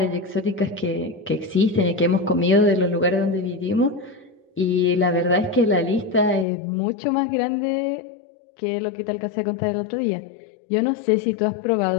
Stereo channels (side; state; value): right; drops out; at 6.5 s